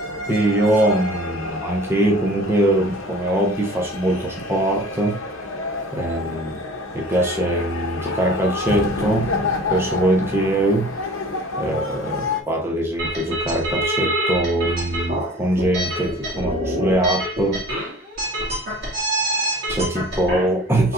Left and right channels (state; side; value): normal; both; correlation 0.46